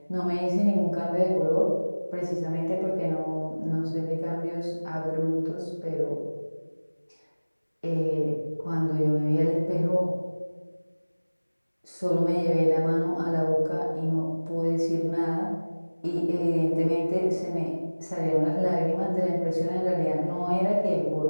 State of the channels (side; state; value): both; inverted; correlation -1.00